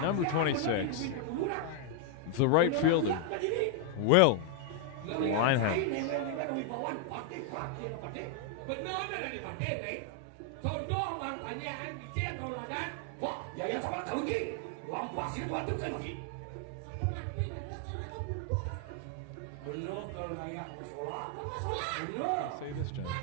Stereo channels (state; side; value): different; both; correlation 0.00